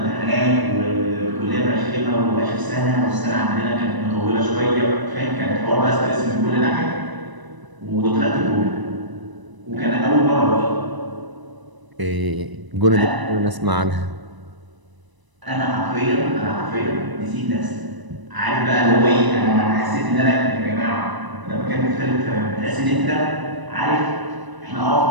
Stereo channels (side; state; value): left; late; 1.0 ms